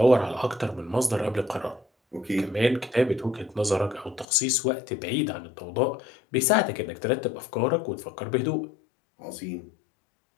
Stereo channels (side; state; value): right; drops out; at 4.2 s